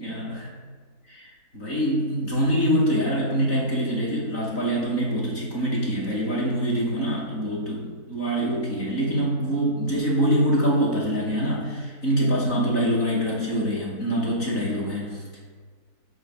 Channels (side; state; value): right; late; 3.9 ms